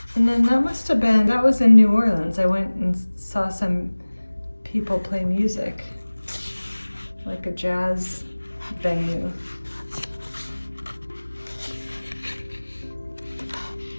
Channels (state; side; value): inverted; both; correlation -1.00